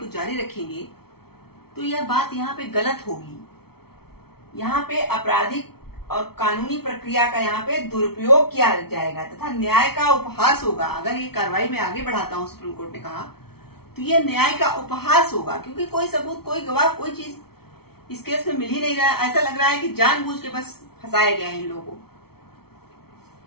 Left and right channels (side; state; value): right; late; 0.95 ms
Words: जारी रखेंगे तो यह बात यहाँ पे गलत होगी। यहाँ पे आपराधिक और कानूनी प्रक्रिया का यहाँ पे दुरुपयोग किया जाएगा तथा न्याय का उपहास होगा। अगर ये कार्रवाई में आगे बढ़ाता हूँ, सुप्रीम कोर्ट ने कहा, तो ये न्याय का उपहास होगा क्योंकि कोई सबूत, कोई गवाह, कोई चीज इस केस में मिल ही नहीं रहा है। ऐसा लग रहा है कि जानबूझ के बस फंसाया गया है इन लोगों को।